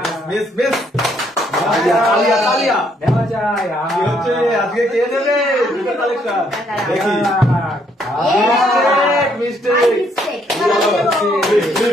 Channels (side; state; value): both; normal; correlation 0.70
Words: মিস তালিয়া নেওয়া যায়। কি হচ্ছে আজকে? কে নেবে জুতো কালেকশন? দেখি। মিস্টেক